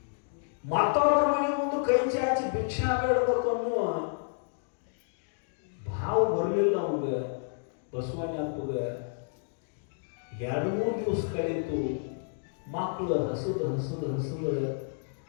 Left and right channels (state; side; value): silent; right; digital silence